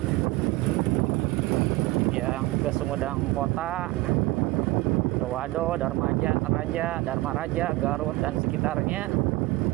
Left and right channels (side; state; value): left; quieter; 20.0 dB